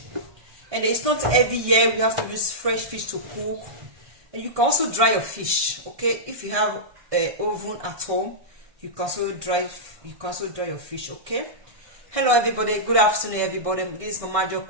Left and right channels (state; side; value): late; left; 1.6 ms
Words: and it's not every year we have to use fresh fish to cook. And you can also dry your fish, okay? If you have an oven at home, you can also dry your fish, okay? Hello everybody, good afternoon everybody. This is Mama Jo